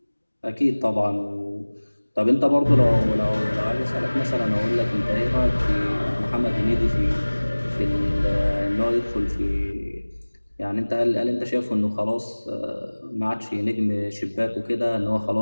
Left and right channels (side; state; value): both; inverted; correlation -1.00